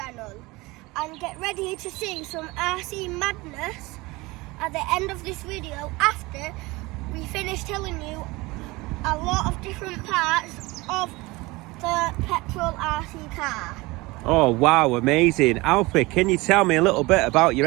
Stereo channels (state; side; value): quieter; left; 22.3 dB